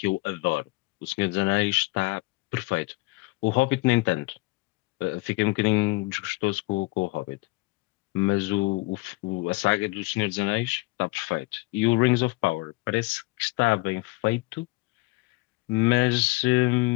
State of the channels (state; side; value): quieter; right; 23.1 dB